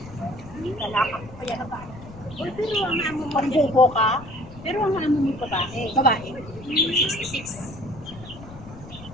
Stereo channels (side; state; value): left; noise; rumble, 16 dB below the sound